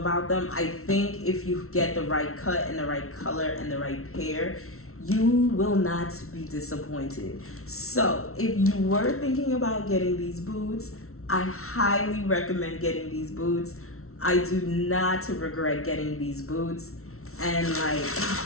them. I think if you get the right cut and the right color and the right pair, you will not be disappointed. So if you were thinking about getting these boots, I highly recommend getting these boots. I do not regret getting these boots. And like,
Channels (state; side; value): late; right; 0.63 ms